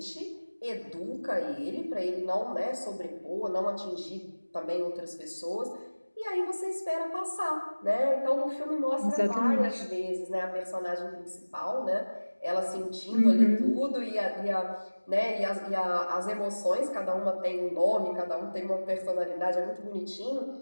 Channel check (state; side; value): inverted; both; correlation -1.00